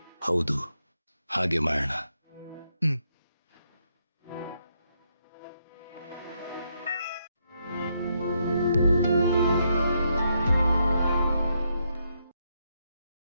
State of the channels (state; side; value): inverted; both; correlation -0.78